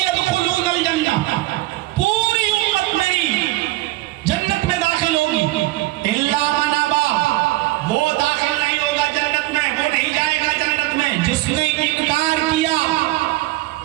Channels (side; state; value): left; quieter; 18.4 dB